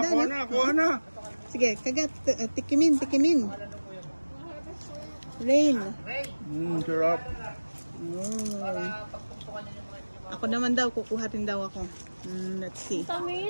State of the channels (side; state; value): both; inverted; correlation -1.00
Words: no? Kuha na. Sige, kagat. Tikimin. Rain. Sarap. Oh. Ako naman daw, kukuha rin daw ako. Let's see.